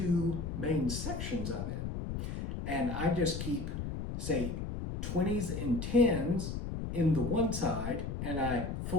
main sections of it. And I just keep, say, 20s and 10s in the one side, and I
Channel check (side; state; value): left; noise; rumble, 4 dB below the sound